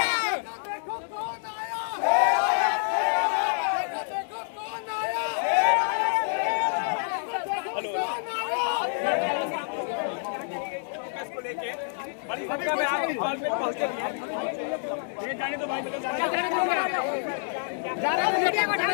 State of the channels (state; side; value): silent; right; 60 dB below the other